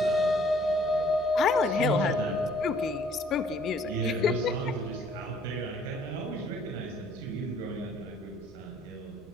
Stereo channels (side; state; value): both; normal; correlation 0.60